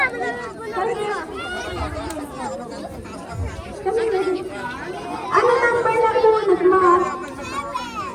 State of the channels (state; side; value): identical; both; correlation 1.00